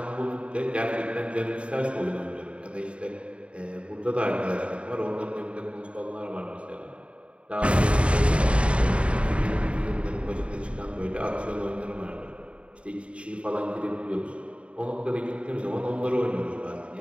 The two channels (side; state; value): left; late; 0.060 ms